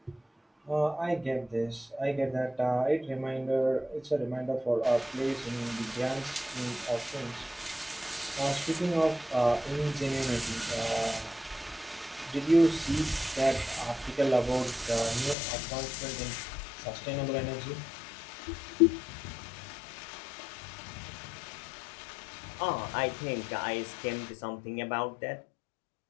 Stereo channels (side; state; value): right; drops out; at 15.4 s